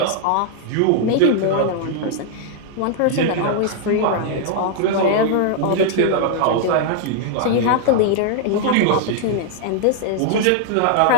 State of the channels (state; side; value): different; both; correlation 0.00